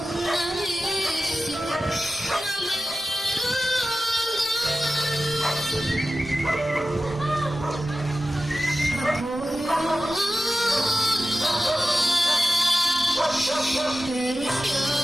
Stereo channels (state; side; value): normal; both; correlation 0.94